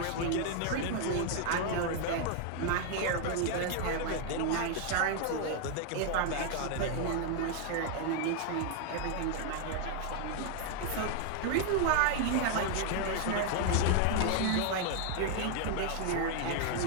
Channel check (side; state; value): both; different; correlation 0.00